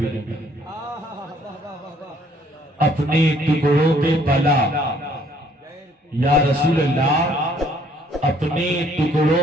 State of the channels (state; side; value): normal; both; correlation 0.63